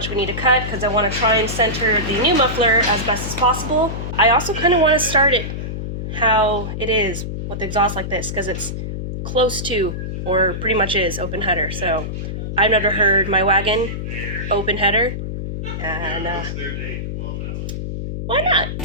we need to cut, because I want to try and center the new muffler as best as possible. I also kind of want to start it how it is with the exhaust like this, because it's close to, or pretty much is, open header. So I've never heard my wagon open header, and why not?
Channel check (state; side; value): noise; left; hum, 5 dB below the sound